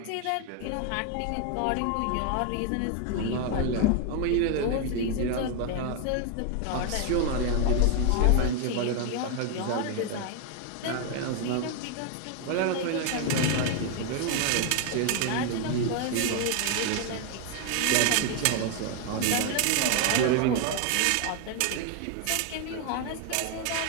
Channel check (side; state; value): both; different; correlation 0.01